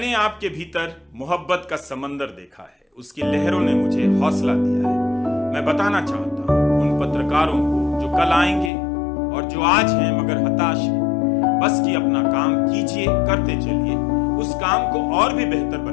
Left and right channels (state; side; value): drops out; right; at 8.7 s